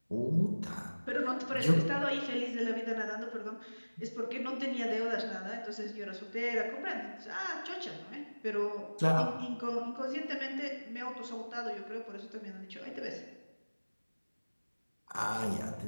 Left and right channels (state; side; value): inverted; both; correlation -1.00